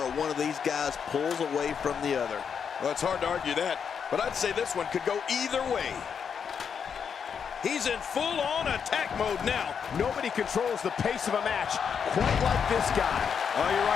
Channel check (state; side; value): quieter; right; 7.0 dB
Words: one of these guys pulls away from the other. Well, it's hard to argue that, but I'd say this one could go either way. He's in full-on attack mode now. Nobody controls the pace of a match quite like this guy. Oh, you're